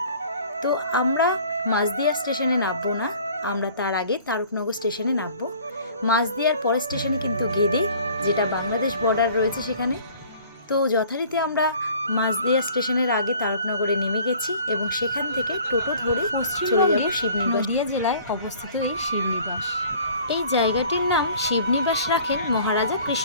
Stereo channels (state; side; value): inverted; both; correlation -0.50